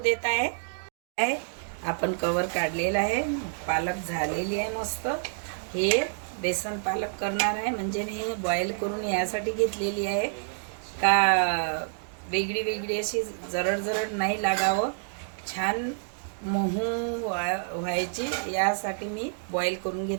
आहे. आपण कव्हर काढलेला आहे. पालक झालेली आहे मस्त. हे बेसन पालक करणार आहे, म्हणजे हे बॉईल करून यासाठी घेतलेली आहे का वेगळी वेगळी अशी जरड नाही लागावं, छान मऊ व्हायची, यासाठी मी बॉईल करून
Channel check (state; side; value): silent; left; digital silence